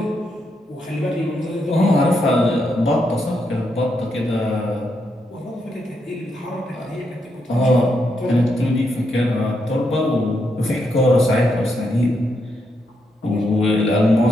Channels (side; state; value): both; normal; correlation 0.80